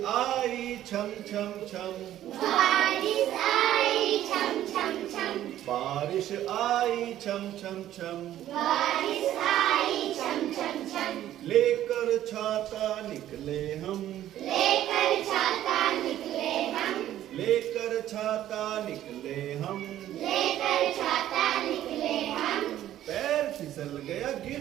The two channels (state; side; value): quieter; left; 12.5 dB